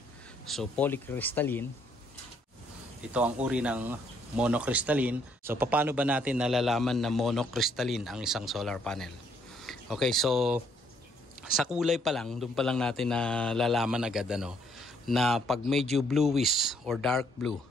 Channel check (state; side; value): normal; both; correlation 0.68